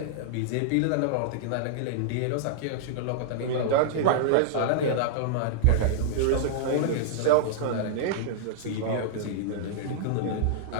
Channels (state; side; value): different; both; correlation -0.01